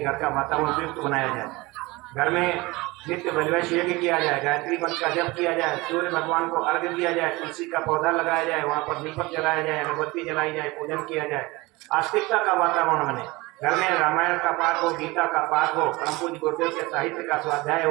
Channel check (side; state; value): left; quieter; 22.5 dB